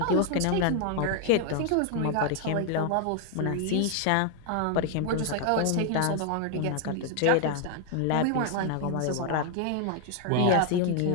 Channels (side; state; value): both; different; correlation 0.00